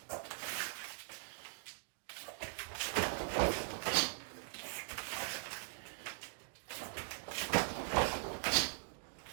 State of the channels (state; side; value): silent; left; digital silence